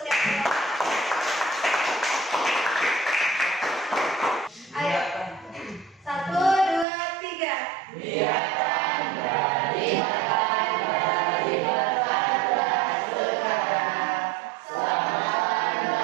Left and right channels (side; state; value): left; drops out; at 6.9 s